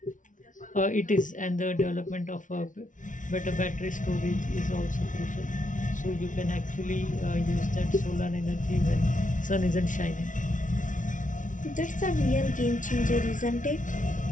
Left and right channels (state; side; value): late; right; 0.37 ms